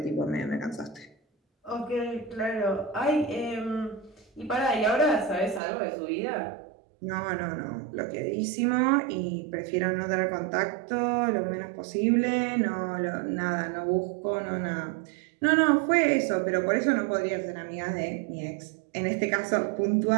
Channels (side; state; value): left; drops out; at 5.6 s